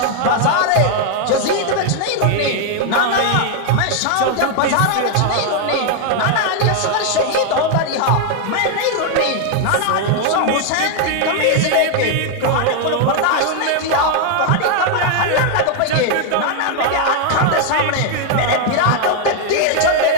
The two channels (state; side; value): different; both; correlation 0.00